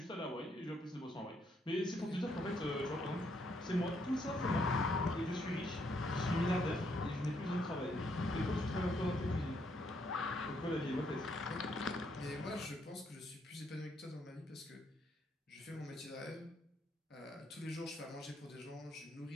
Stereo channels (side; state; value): both; normal; correlation 0.73